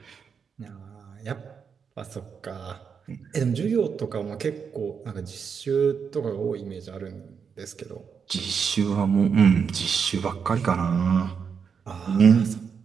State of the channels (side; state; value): left; quieter; 6.4 dB